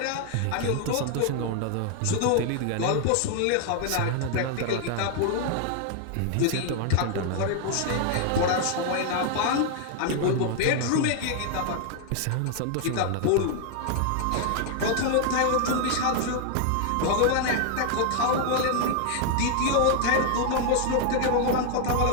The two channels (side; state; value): both; different; correlation 0.00